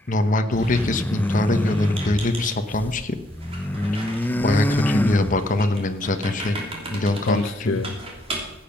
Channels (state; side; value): normal; both; correlation 0.71